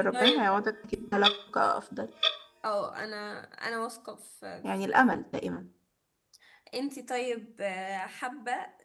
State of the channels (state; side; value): identical; both; correlation 1.00